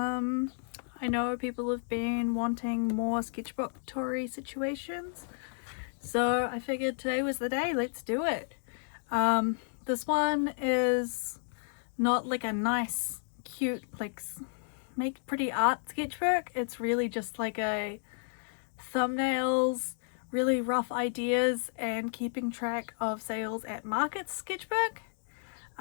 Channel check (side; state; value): right; silent; digital silence